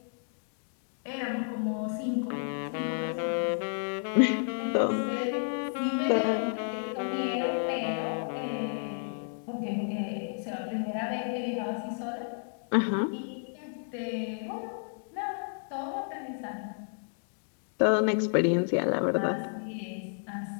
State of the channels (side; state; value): right; silent; digital silence